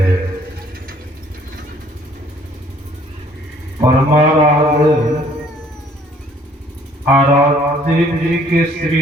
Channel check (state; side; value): normal; both; correlation 0.59